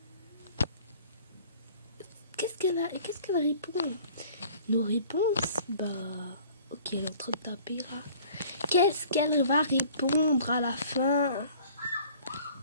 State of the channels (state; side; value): inverted; both; correlation -0.51